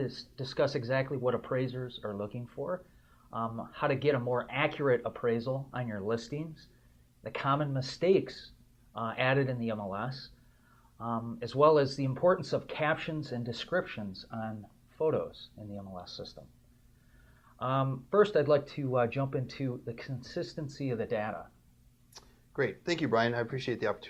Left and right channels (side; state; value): both; identical; correlation 1.00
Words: discuss exactly what appraisers are looking for, how to get a more accurate appraisal on your listings, the common mistakes added in the MLS, as well as the importance of captions and descriptions on photos in the MLS system. First, I'd like to jump into the consistency of the data. Great. Thank you, Brian. I appreciate the